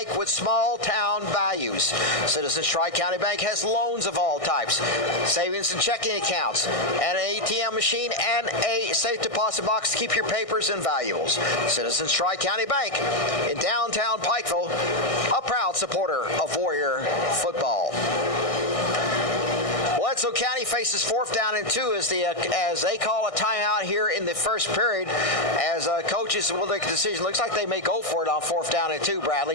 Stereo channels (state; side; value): late; right; 1.6 ms